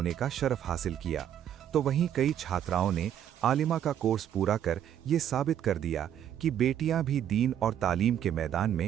का शरफ हासिल किया, तो वहीं कई छात्राओं ने आलिमा का कोर्स पूरा कर ये साबित कर दिया कि बेटियां भी दीन और तालीम के मैदान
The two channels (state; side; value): quieter; left; 10.2 dB